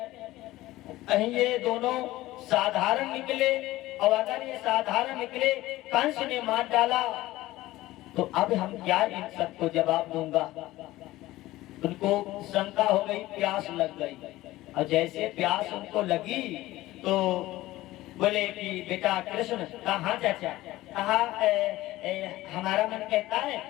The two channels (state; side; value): quieter; right; 17.1 dB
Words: कहीं ये दोनों साधारण निकले, और अगर ये साधारण निकले कंस ने मार डाला तो अब हम क्या इन सबको जवाब दूंगा। उनको शंका हो गई, प्यास लग गई, और जैसे प्यास उनको लगी तो बोले कि बेटा कृष्ण कहाँ चाचा, कहा हमारा मन कहता